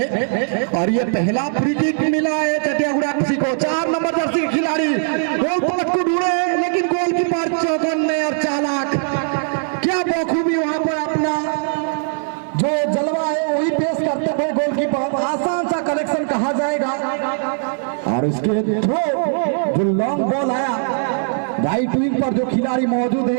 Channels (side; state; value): left; silent; 66 dB below the other